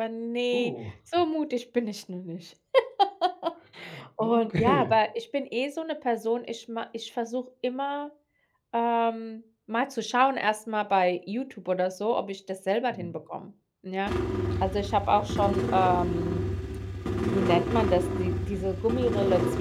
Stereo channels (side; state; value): both; identical; correlation 1.00